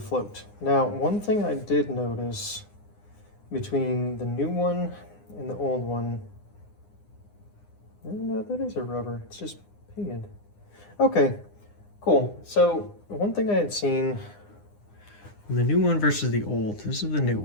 float. Now, one thing I did notice between the new one and the old one, no, that is a rubber, it's just painted. Okay, cool. So one thing I had seen, the new one versus the old, this is the new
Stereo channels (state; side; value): late; right; 9.8 ms